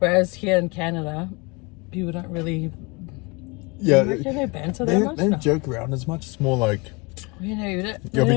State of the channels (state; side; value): quieter; right; 27.2 dB